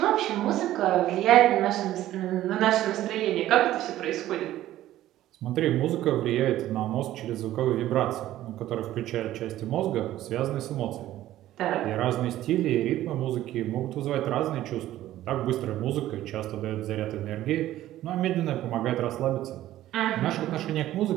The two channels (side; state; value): left; quieter; 14.0 dB